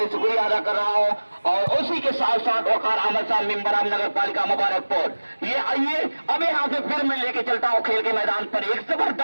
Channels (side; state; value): both; inverted; correlation -1.00